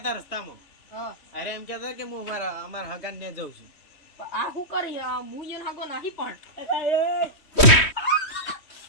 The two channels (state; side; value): late; right; 3.1 ms